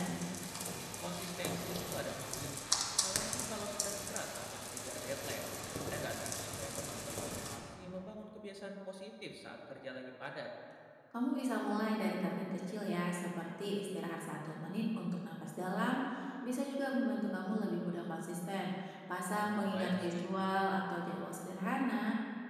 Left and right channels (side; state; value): both; identical; correlation 1.00